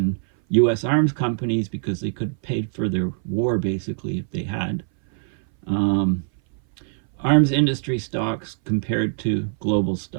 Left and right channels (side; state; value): left; silent; 60 dB below the other